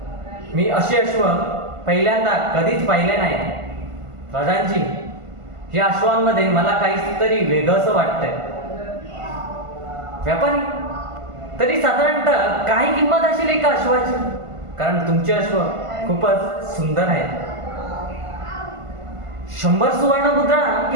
मी असे अश्व पहिल्यांदा कधीच पाहिले नाही. प्रधानजी, या अश्वांमध्ये मला काहीतरी वेगळंच वाटतंय. व्यापारी, तरी साधारणतः काय किंमत असेल एका अश्वाची? कारण तुमचे अश्व खूपच सुंदर आहेत. 100 सुवर्ण मुद्रा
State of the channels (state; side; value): late; left; 1.5 ms